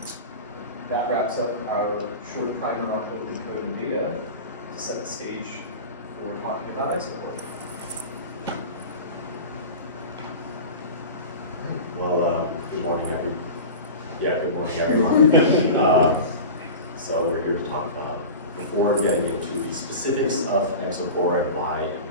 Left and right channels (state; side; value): inverted; both; correlation -0.31